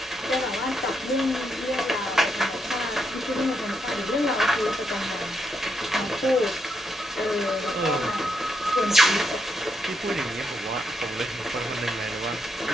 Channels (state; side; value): normal; both; correlation 0.80